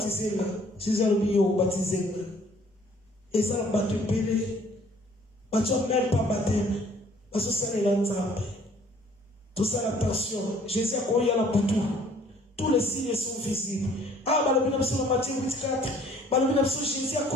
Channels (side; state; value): both; normal; correlation 0.57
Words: là. Jésus a dit baptiser là. Et ça va te péler. Tu n'as même pas baptême. Parce que ça est l'ensemble. Tout ça, l'attention. Jésus a croyé à la boutou. Tous les signes sont visibles. Ah, bah le bien sur la Matthieu 8,4. Bah le bien sur Jésus a